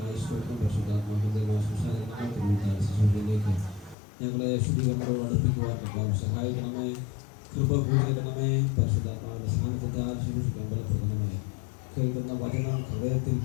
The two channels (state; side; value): drops out; right; at 4.0 s